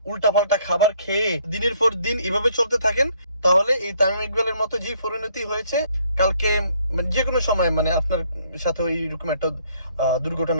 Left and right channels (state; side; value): inverted; both; correlation -0.65